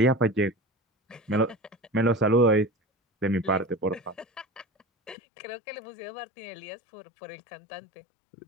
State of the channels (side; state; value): right; drops out; at 5.2 s